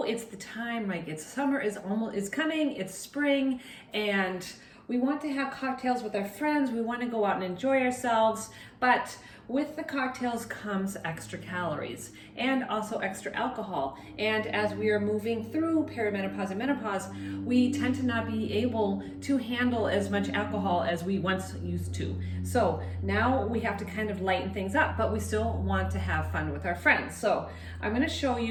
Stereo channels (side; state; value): both; identical; correlation 1.00